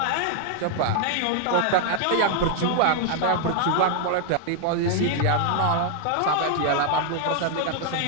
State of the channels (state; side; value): different; both; correlation 0.00